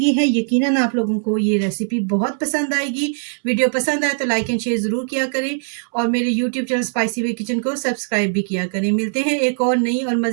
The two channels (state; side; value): silent; left; 66 dB below the other